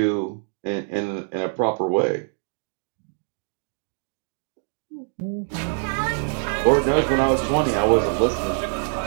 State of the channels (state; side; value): silent; left; 61 dB below the other